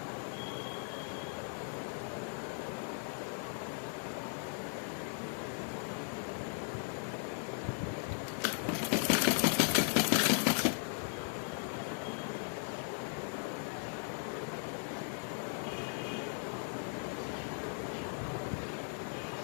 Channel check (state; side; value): silent; right; 52 dB below the other